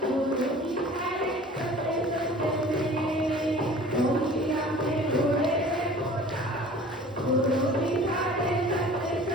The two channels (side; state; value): both; normal; correlation 0.45